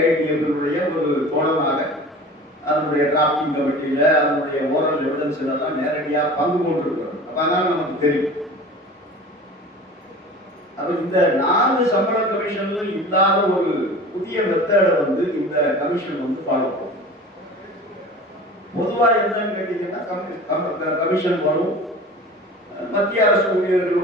ஒரு தோழனாக அதனுடைய டிராப்டிங் கமிட்டியில அதனுடைய ஓரல் எவிடன்ஸ் எல்லாம் நேரடியாக பங்கு கொண்டிருக்கிறோம். அப்ப அதனால நமக்கு தெரியும். அப்ப இந்த 4 சம்பள கமிஷன்ல இல்லாத ஒரு புதிய மெத்தடை இந்த கமிஷன் ஃபாலோ பண்ணும். பொதுவா என்னன்னு கேட்டீங்கன்னா, கமிஷன் வரும், மத்திய அரசு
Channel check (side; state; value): both; normal; correlation 0.39